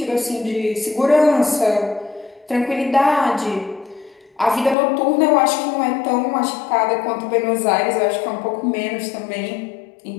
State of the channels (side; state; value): right; drops out; at 4.8 s